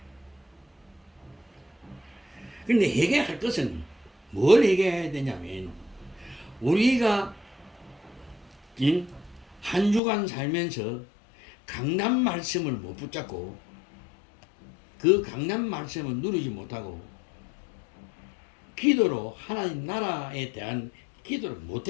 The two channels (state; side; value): drops out; right; at 10.0 s